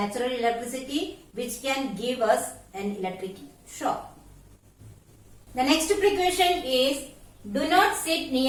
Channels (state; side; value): identical; both; correlation 1.00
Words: electricity, which can give us an electric shock. The next precaution is do not sit